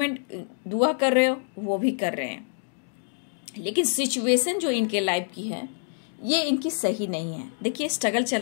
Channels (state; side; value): silent; right; digital silence